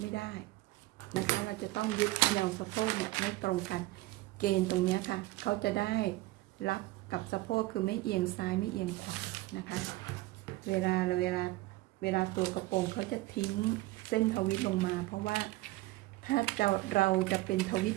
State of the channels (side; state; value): left; quieter; 19.3 dB